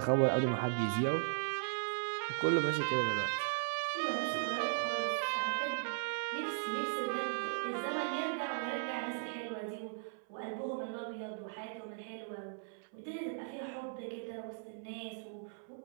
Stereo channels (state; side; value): silent; left; 53 dB below the other